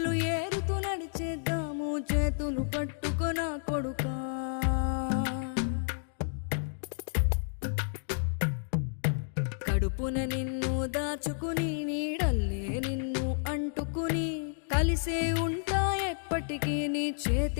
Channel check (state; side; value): silent; right; digital silence